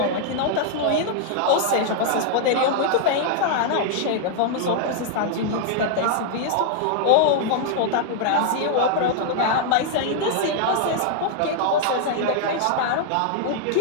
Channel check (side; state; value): both; different; correlation -0.01